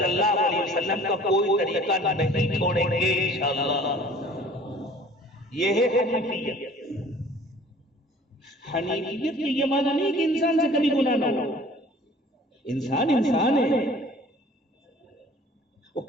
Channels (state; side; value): normal; both; correlation 0.50